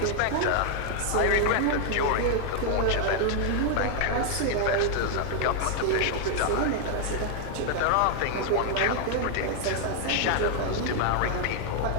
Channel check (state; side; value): different; both; correlation 0.00